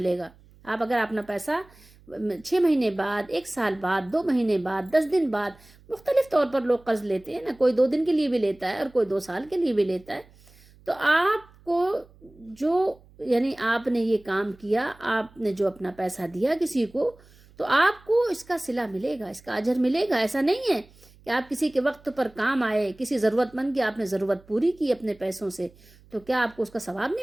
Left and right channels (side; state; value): right; noise; hum, 26 dB below the sound